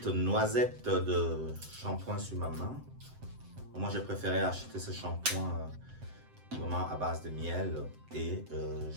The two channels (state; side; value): late; left; 7.7 ms